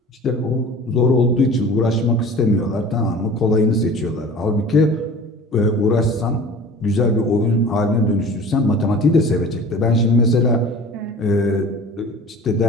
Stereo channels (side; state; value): both; normal; correlation 0.41